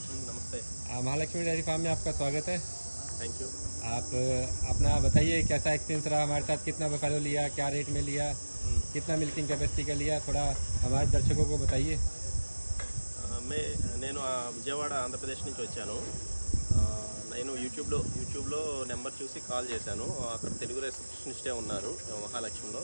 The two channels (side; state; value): both; inverted; correlation -1.00